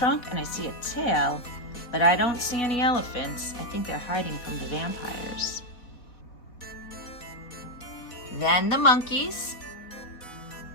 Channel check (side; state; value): right; late; 4.1 ms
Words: and I see a tail, but I don't see any elephants. I think they're hiding from the vampires. Then the monkeys.